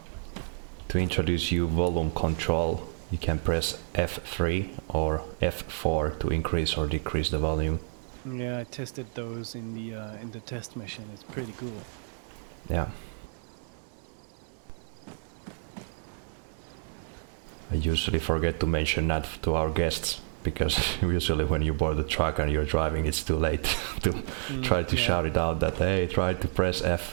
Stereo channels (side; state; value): left; silent; digital silence